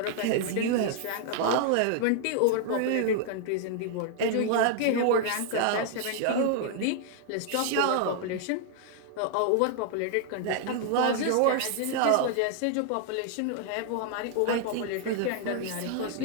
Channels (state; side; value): different; both; correlation 0.00